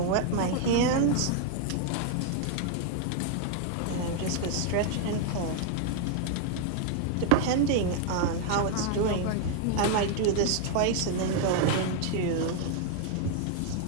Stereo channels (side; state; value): both; different; correlation 0.00